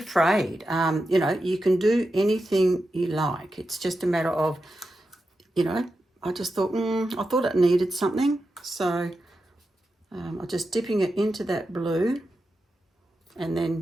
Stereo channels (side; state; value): both; normal; correlation 0.89